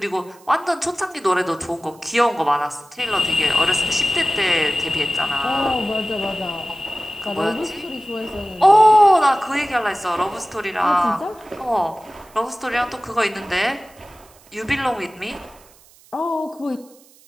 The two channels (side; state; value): right; noise; hiss, 27 dB below the sound